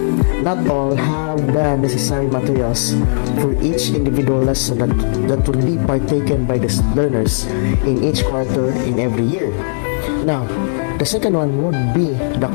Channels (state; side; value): silent; right; digital silence